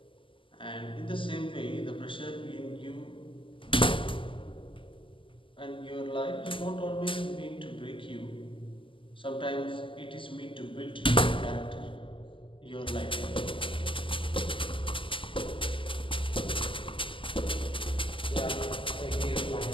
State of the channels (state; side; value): late; right; 0.25 ms